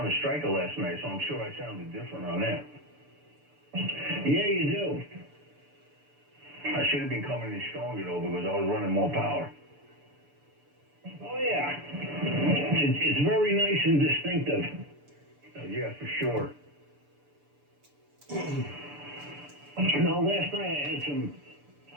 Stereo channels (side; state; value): left; late; 6.9 ms